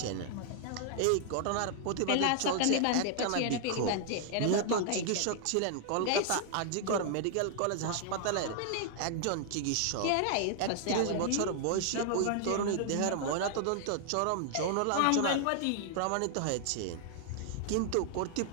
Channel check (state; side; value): different; both; correlation 0.00